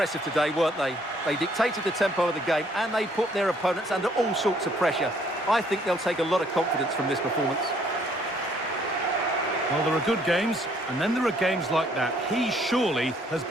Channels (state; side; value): normal; both; correlation 0.64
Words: today, weren't they? They dictated the tempo of the game and they put their opponents under all sorts of pressure. I think they'll take a lot of confidence from this performance. Well, there are good games, and then there are games like that. He surely has